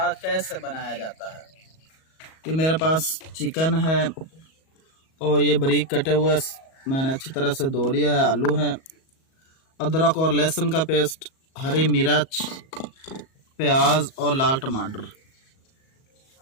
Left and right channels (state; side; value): late; right; 37 ms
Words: कैसे बनाया जाता है। ये मेरे पास चिकन है और ये बारीक कटे हुए मैंने अच्छी तरह से धो लिया है। आलू है, अदरक और लहसुन का पेस्ट, हरी मिर्च, प्याज और लाल टमाटर।